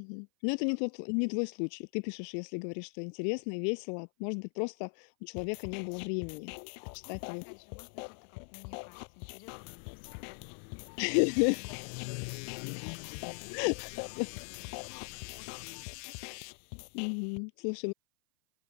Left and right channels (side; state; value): right; silent; 52 dB below the other